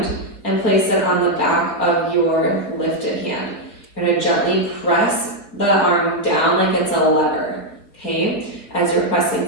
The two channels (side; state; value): right; late; 4.1 ms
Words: and place it on the back of your lifted hand. You're going to gently press the arm down like it's a lever, okay? As you're